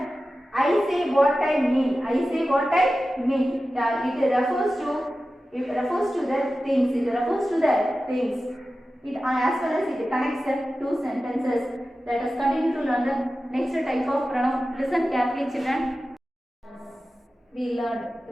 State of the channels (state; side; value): normal; both; correlation 0.94